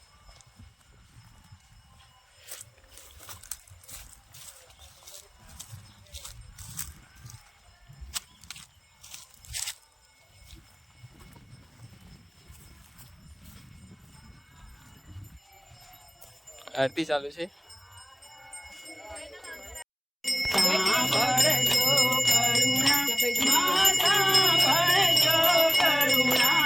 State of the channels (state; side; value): identical; both; correlation 1.00